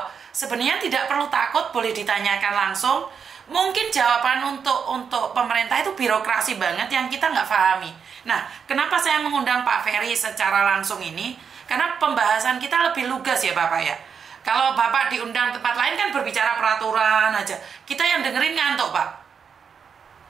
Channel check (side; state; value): left; quieter; 6.6 dB